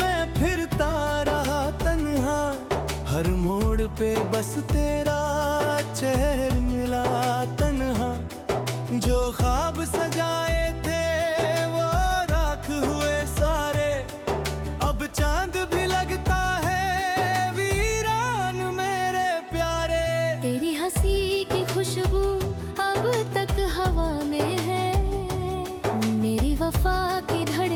फिरता रहा तन्हा, हर मोड़ पे बस तेरा चेहरा मिला तन्हा। जो ख्वाब सजाए थे वो राख हुए सारे, अब चांद भी लगता है वीरान मेरे प्यारे। तेरी हंसी की खुशबू अब तक हवा में है, मेरी वफा की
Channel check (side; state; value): both; identical; correlation 1.00